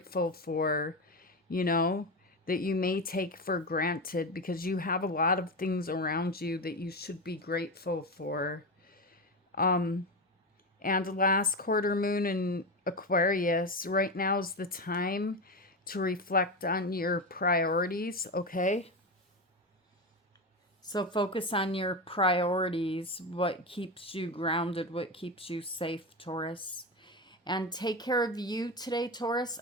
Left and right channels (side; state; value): both; normal; correlation 0.17